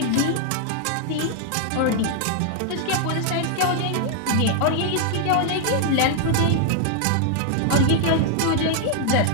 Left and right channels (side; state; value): both; different; correlation 0.00